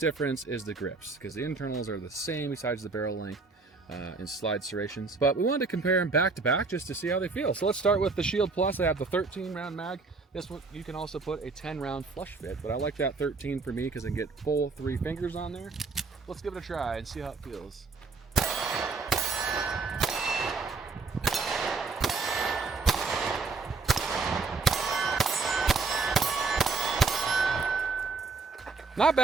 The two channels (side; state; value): left; quieter; 4.2 dB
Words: difference is the grips, because the internals are the same besides the barrel length and slide serrations. But we wanted to compare them back to back just to see how they feel. So let's start with the Shield Plus. I have the 13 round mag. This one, you can also put a 10 round flush fit, but I like that 13 for me because I can get full 3 fingers on there. Let's give it a try and see how it feels. Not